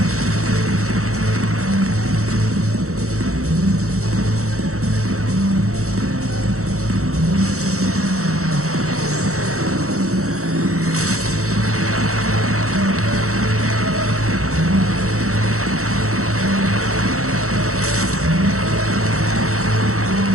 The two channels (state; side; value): late; left; 0.64 ms